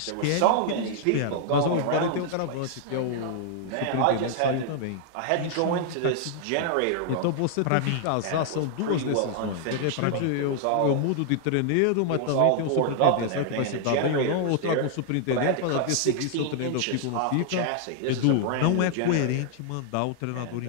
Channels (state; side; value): different; both; correlation -0.01